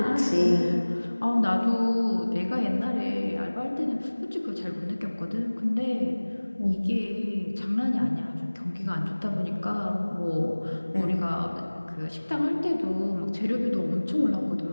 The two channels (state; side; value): inverted; both; correlation -1.00